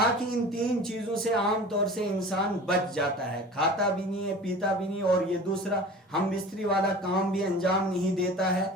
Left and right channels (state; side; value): normal; both; correlation 0.39